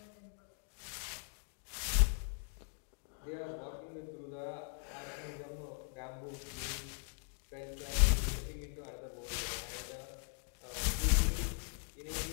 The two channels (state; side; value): silent; right; 51 dB below the other